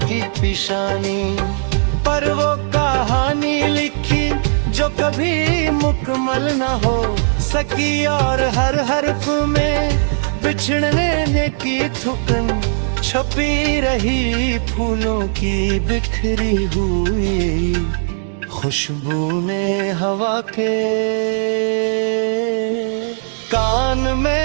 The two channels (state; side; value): silent; left; digital silence